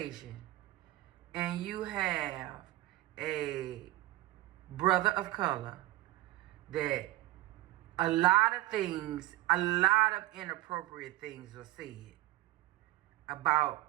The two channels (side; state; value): left; quieter; 17.3 dB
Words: and you have a brother of color, that a lot of inappropriate things are said about